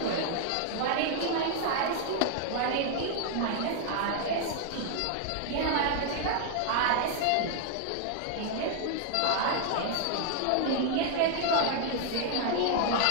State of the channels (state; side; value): different; both; correlation 0.00